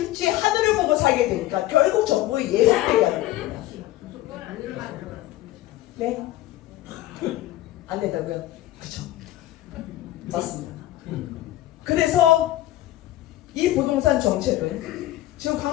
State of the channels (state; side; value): quieter; right; 15.2 dB